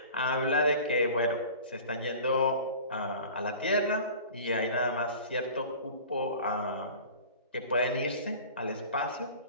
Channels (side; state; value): both; inverted; correlation -0.41